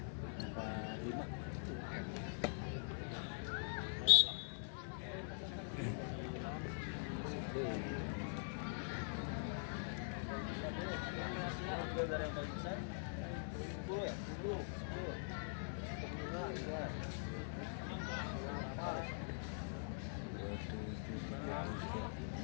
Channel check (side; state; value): right; silent; digital silence